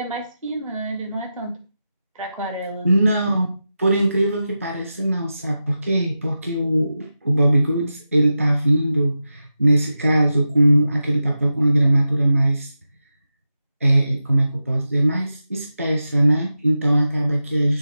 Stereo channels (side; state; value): both; inverted; correlation -0.91